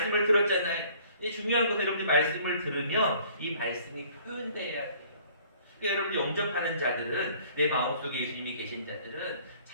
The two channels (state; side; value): inverted; both; correlation -0.56